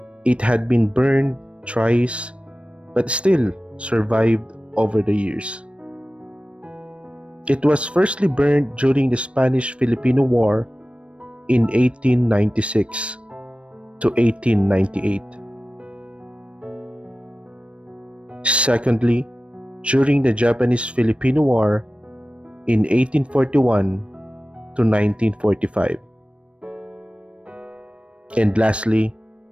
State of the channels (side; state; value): left; late; 0.060 ms